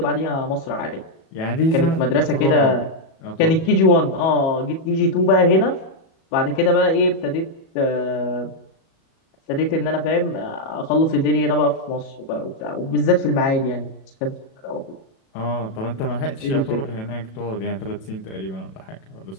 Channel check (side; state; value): right; late; 37 ms